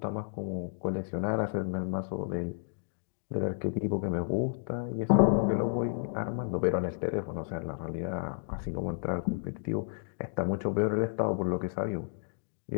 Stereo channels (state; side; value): silent; right; digital silence